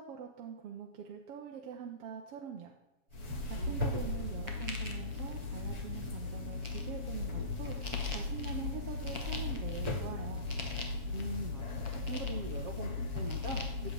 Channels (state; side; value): late; left; 7.3 ms